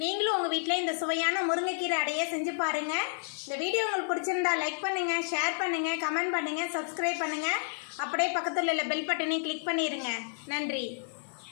நீங்களும் உங்கள் வீட்டில் இந்த சுவையான முருங்கைக்கீரை அடையை செஞ்சு பாருங்கள். இந்த வீடியோ உங்களுக்கு பிடிச்சிருந்தா லைக் பண்ணுங்கள், ஷேர் பண்ணுங்கள், கமெண்ட் பண்ணுங்கள், சப்ஸ்கிரைப் பண்ணுங்கள். அப்படியே பக்கத்தில் உள்ள பெல் பட்டனையும் கிளிக் பண்ணிடுங்க. நன்றி.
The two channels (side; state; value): right; silent; digital silence